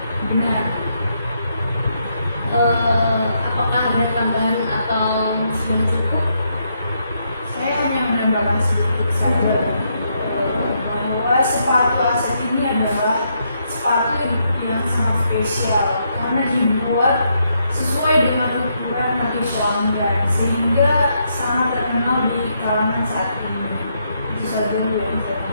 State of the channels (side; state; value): both; inverted; correlation -0.77